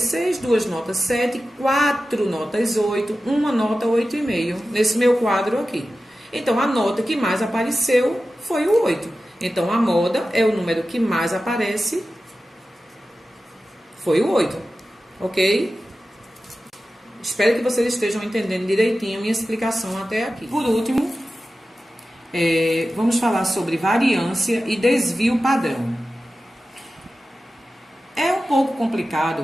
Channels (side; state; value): both; normal; correlation 0.94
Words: 6, 2 notas 7, 4 notas 8, uma nota 8,5 nesse meu quadro aqui. Então, a nota que mais apareceu foi o 8. Então, a moda é o número que mais aparece, foi o 8. Ok? Espero que vocês estejam entendendo direitinho a minha explicação até aqui. Por último, vamos falar sobre variância e desvio padrão. É um pouco